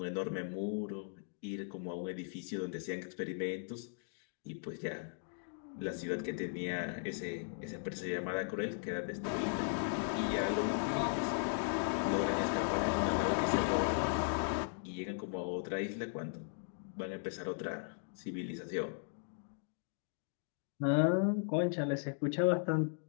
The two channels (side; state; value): right; silent; digital silence